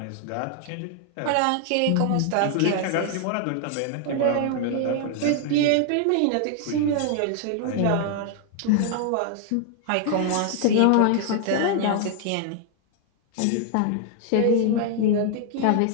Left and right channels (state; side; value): different; both; correlation 0.00